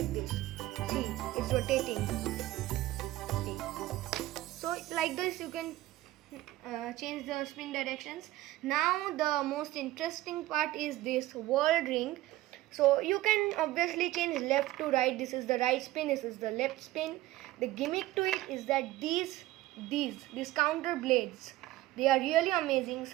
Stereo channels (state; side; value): quieter; left; 16.6 dB